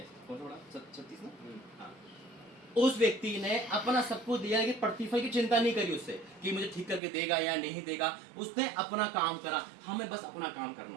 सा बड़ा? 36 ना? हाँ। उस व्यक्ति ने अपना सब कुछ दिया, लेकिन प्रतिफल की चिंता नहीं करी उससे कि मुझे ठीक करके देगा या नहीं देगा। उसने अपना काम करा। हमें बस अपना काम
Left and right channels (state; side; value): drops out; left; at 7.0 s